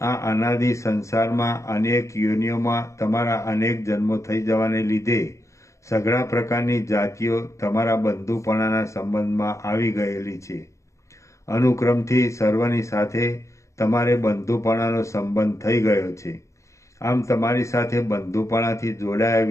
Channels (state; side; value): late; right; 0.15 ms